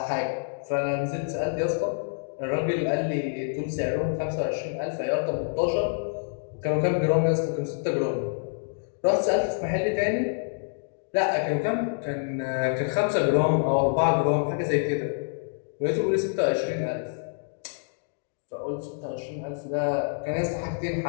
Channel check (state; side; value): silent; right; digital silence